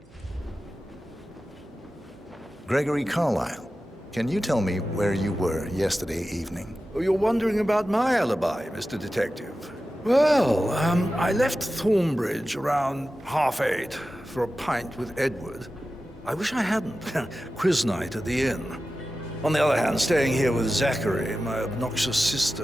Gregory Carlisle, can you tell me where you were yesterday evening? Oh, you're wondering about my alibi, Mr. Detective. Well, I left Thornbridge around 8:30 for a pint with Edward. I wish I hadn't. Quiz night at the inn. On the other hand, staying here with Zachary, my obnoxious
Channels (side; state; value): both; normal; correlation 0.94